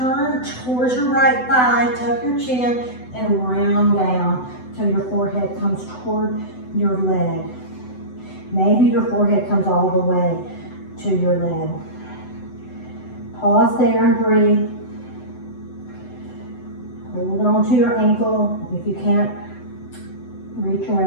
towards your right thigh, tuck your chin, and round down till your forehead comes toward your leg. Maybe your forehead comes all the way to your leg. Pause there and breathe. Hold on to your ankle. If you can't reach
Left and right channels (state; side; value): late; right; 7.9 ms